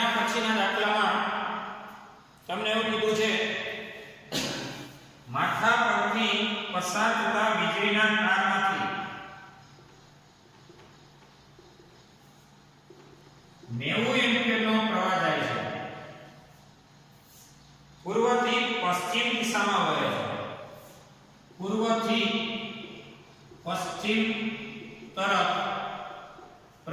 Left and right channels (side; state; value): both; identical; correlation 1.00